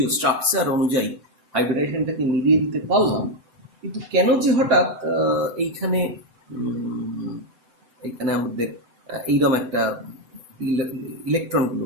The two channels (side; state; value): left; late; 7.8 ms